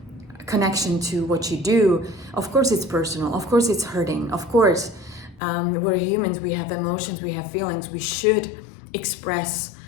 connection to what you do. Of course it's personal, of course it's hurting, of course we're humans, we have emotions, we have feelings, we should express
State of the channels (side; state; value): right; drops out; at 5.4 s